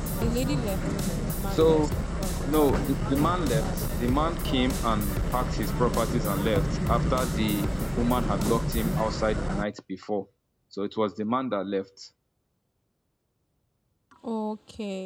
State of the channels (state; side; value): identical; both; correlation 1.00